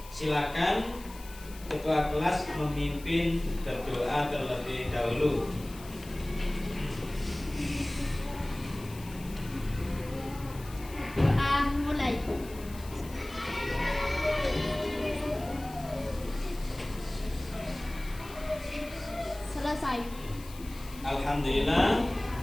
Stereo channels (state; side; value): noise; left; hiss, 18 dB below the sound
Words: silakan ketua kelas memimpin berdoa terlebih dahulu. Doa mulai. Selesai. Alhamdulillah,